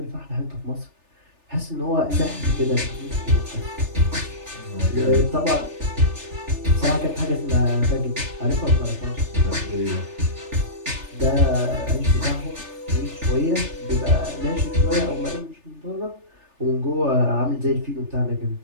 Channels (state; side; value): late; left; 3.3 ms